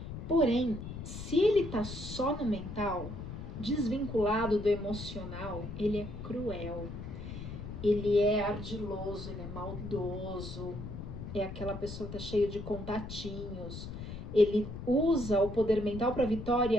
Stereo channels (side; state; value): left; noise; rumble, 8 dB below the sound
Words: Porém, se ele tá só no mental, desvinculado do emocional, ele é cruel. Ele é ardiloso, ele é maldoso. É aquela pessoa que tá cheia de contatinhos. Ele usa o poder mental para